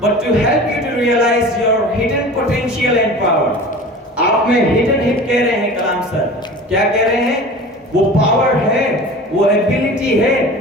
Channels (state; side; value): normal; both; correlation 0.38